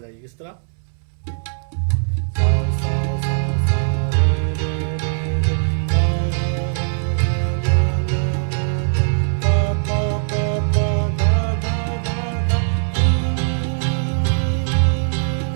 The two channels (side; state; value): left; silent; 65 dB below the other